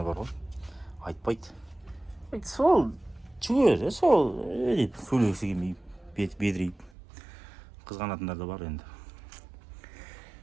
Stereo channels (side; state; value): left; drops out; at 6.9 s